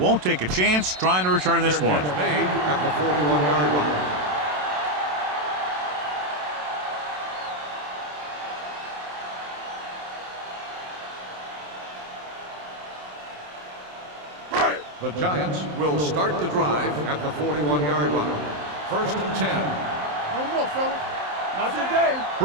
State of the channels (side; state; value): left; late; 27 ms